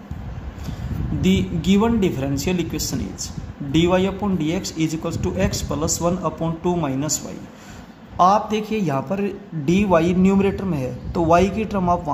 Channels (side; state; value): both; identical; correlation 1.00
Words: the given differential equation is dy upon dx is equal to x plus 1 upon 2 minus y। आप देखिए यहाँ पर dy न्यूमरेटर में है, तो y की टर्म आप